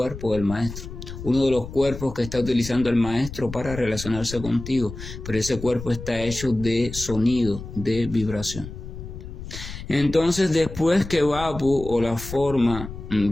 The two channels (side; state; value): left; noise; rumble, 11 dB below the sound